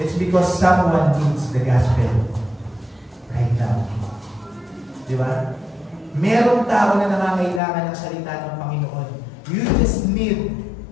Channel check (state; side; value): drops out; right; at 7.6 s